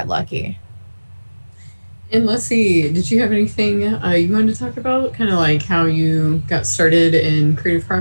lucky. And Leslie, did you have anything you wanted to talk about? Kind of like how you got started in creative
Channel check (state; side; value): inverted; both; correlation -1.00